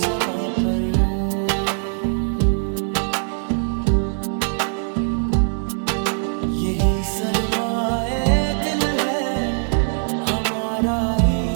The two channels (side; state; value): left; silent; digital silence